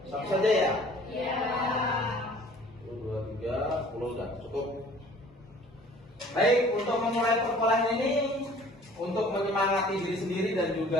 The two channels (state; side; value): normal; both; correlation 0.51